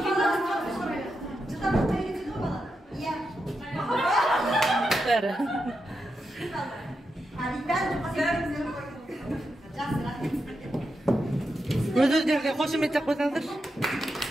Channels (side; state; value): both; normal; correlation 0.87